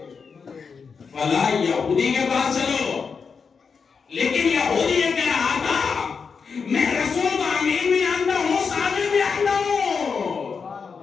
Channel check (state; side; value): quieter; right; 5.6 dB